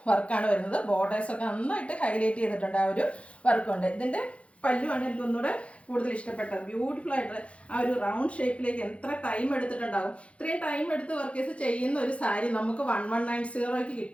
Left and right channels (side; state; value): right; late; 0.062 ms